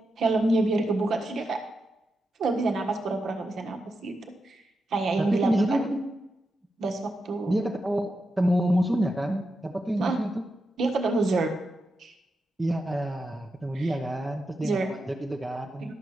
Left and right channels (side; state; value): both; normal; correlation 0.87